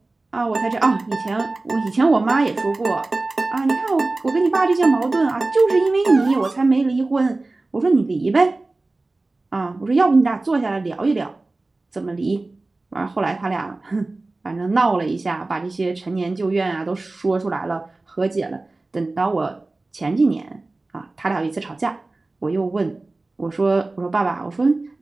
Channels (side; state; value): left; quieter; 3.2 dB